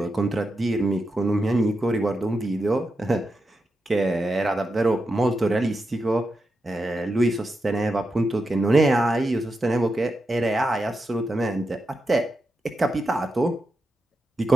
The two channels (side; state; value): both; normal; correlation 0.88